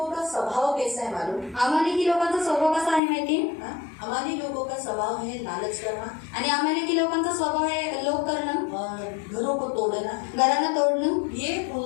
का स्वभाव कैसा है मालूम? अमालेकी लोकांचा स्वभाव कसा आहे माहिती? हाँ? अमाली लोगों का स्वभाव है लालच करना आणि अमालेकी लोकांचा स्वभाव आहे लोभ करणं, और घरों को तोड़ना, घरांना तोडणं, ये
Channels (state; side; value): drops out; right; at 3.0 s